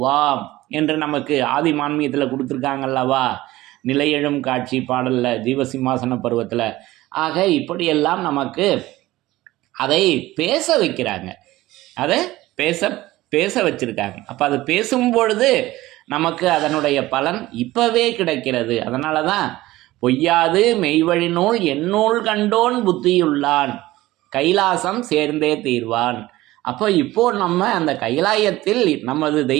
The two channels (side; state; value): left; quieter; 17.4 dB